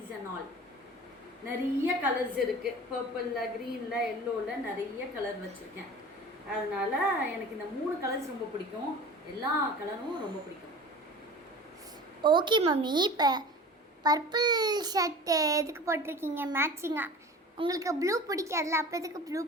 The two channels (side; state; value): both; normal; correlation 0.38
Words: and all. நிறைய colours இருக்குது பர்பிளில் க்ரீனில் எல்லோவில் நிறைய colour வச்சுருக்கேன். அதனால் எனக்கு இந்த 3 colours ரொம்ப பிடிக்கும். எல்லா கலரும் ரொம்ப பிடிக்கும். Okay mummy. இப்போ பர்பிள் ஷர்ட் எதுக்கு போட்டிருக்கீங்க மேட்சிங்காக? உங்களுக்கு ப்ளூ பிடிக்காதுல, அப்போ எதுக்கு ப்ளூ